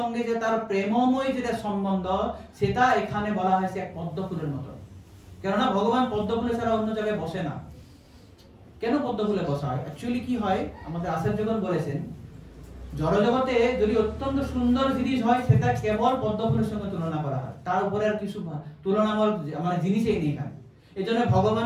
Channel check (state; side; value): identical; both; correlation 1.00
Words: যে তার প্রেমময় যেটা সম্বন্ধ, সেটা এখানে বলা হয়েছে এক পদ্মফুলের মতো। কেননা ভগবান পদ্মফুলে ছাড়া অন্য জায়গায় বসে না। কেন পদ্মফুলে বসা হয়? অ্যাকচুয়ালি কি হয়, আমাদের আচার্যগণ বলেছেন জড়জগতে যদি অত্যন্ত সুন্দর জিনিস হয়, সেটা কেবল পদ্মফুলের সঙ্গে তুলনা করা হয়, তার উপরে আর কিছু তুলনামূল মানে জিনিসই নেই এখানে। এই জন্য